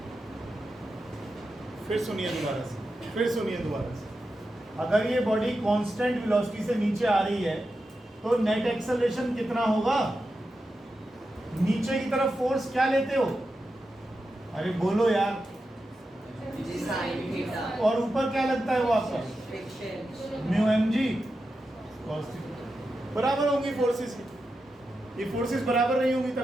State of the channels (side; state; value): both; normal; correlation 0.89